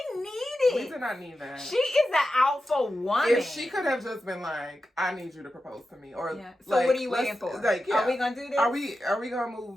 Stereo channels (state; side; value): normal; both; correlation 0.91